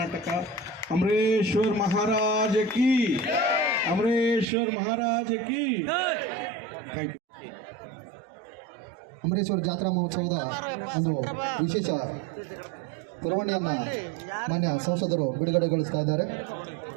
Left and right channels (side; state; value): left; drops out; at 4.5 s